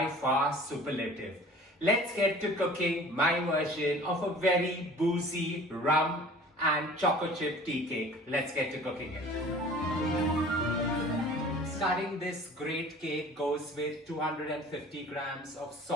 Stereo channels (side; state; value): both; normal; correlation 0.46